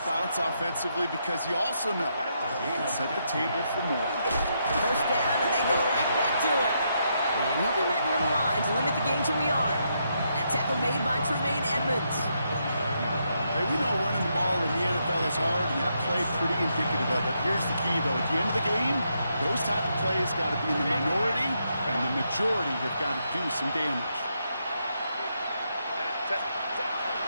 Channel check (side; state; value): both; inverted; correlation -0.79